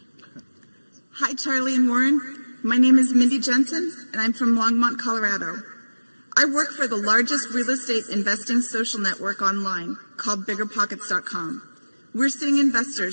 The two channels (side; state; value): both; inverted; correlation -1.00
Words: Hi, Charlie and Warren. My name is Mindy Jensen, and I'm from Longmont, Colorado. I work for the largest real estate investing social network online called BiggerPockets.com. We're seeing